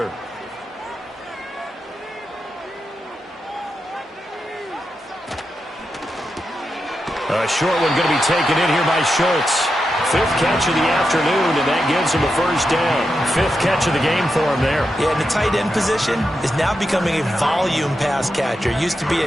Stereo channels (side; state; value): both; normal; correlation 0.87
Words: A short one going to be taken in here by Schultz. 5th catch of the afternoon, and that gives him a first down. 5th catch of the game for him there. Yeah, and the tight end position is now becoming a volume pass catcher. It used to be